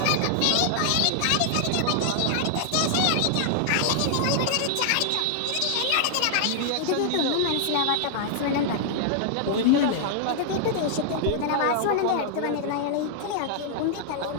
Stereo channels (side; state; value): both; different; correlation -0.01